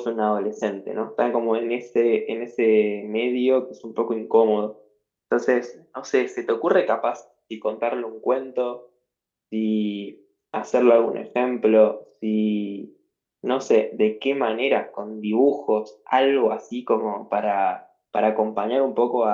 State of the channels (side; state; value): both; identical; correlation 1.00